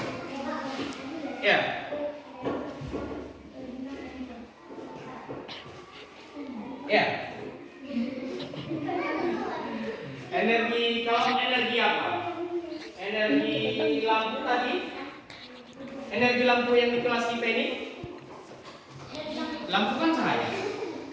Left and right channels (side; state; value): both; identical; correlation 1.00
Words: Ya. Ya. Kalau energi apa? Energi lampu tadi. Energi lampu yang di kelas kita ini. Lampu kan cahaya.